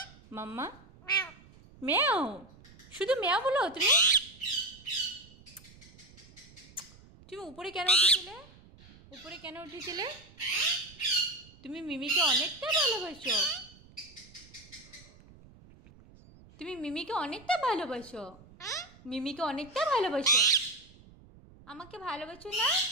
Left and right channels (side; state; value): right; noise; rumble, 23 dB below the sound